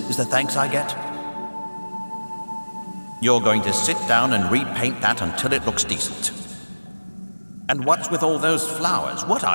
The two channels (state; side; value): inverted; both; correlation -1.00